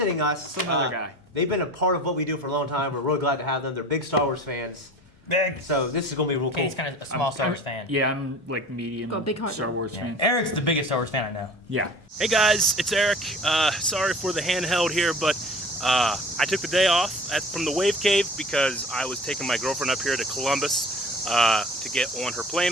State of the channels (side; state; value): both; normal; correlation 0.42